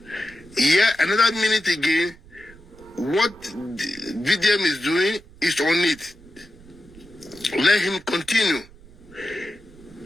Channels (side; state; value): right; noise; rumble, 23 dB below the sound